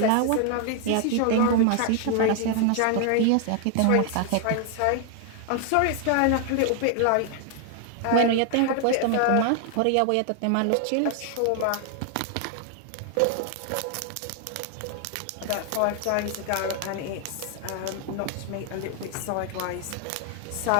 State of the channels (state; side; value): different; both; correlation 0.00